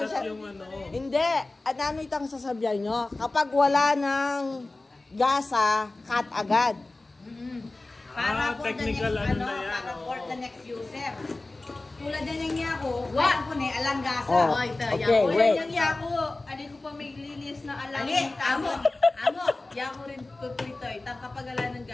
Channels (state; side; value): quieter; right; 3.1 dB